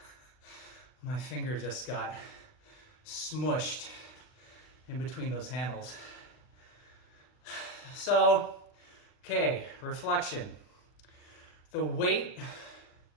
my finger just got smushed in between those handles. So, okay, reflection. The weight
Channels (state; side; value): late; right; 39 ms